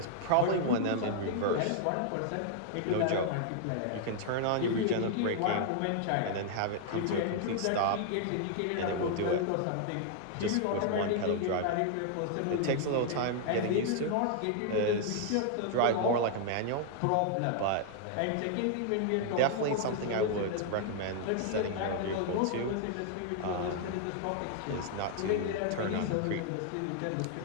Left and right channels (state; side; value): different; both; correlation 0.00